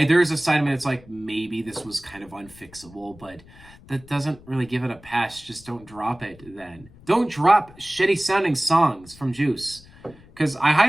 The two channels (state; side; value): noise; left; rumble, 23 dB below the sound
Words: there's a side of me that's like, maybe this was kind of unfixable, but that doesn't really give it a pass. Just don't drop it then. Don't drop shitty sounding songs from Juice. Because I